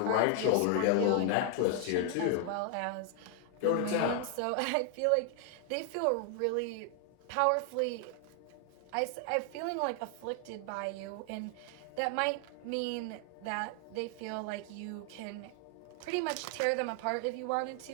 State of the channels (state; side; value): different; both; correlation 0.00